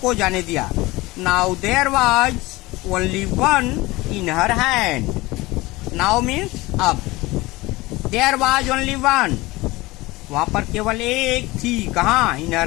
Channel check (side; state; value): right; quieter; 20.7 dB